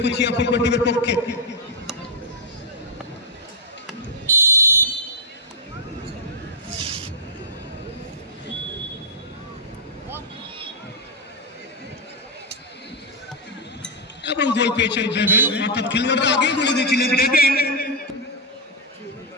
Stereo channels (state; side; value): normal; both; correlation -0.03